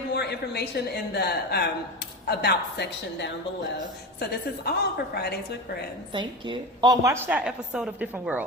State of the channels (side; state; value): both; normal; correlation 0.25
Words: more information in the About section down below. So this is all for Fridays with Friends. Thank you. Oh, watch that episode of Different